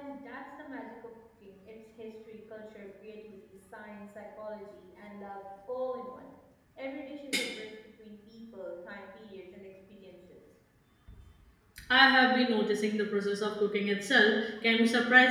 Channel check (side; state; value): both; identical; correlation 1.00